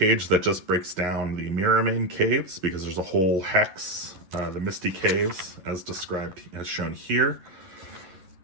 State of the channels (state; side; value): late; left; 11 ms